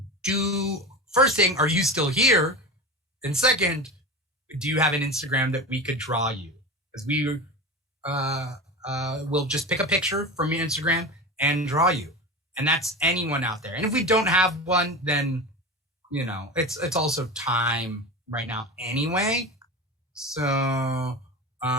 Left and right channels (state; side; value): normal; both; correlation 0.26